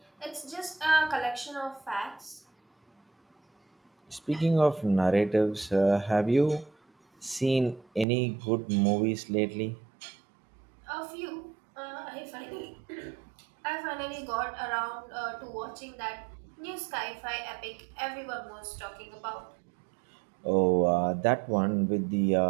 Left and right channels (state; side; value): drops out; left; at 8.1 s